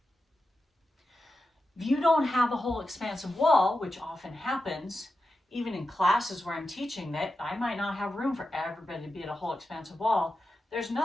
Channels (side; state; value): both; normal; correlation 0.90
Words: If you don't have a whole expansive wall, which often happens, even in classes where I'm teaching that I might not have room for everybody to be at a whole expansive wall, there's